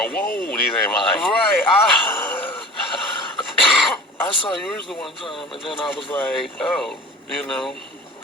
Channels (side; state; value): both; normal; correlation 0.39